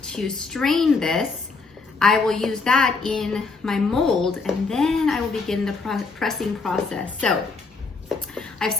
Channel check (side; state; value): right; quieter; 4.3 dB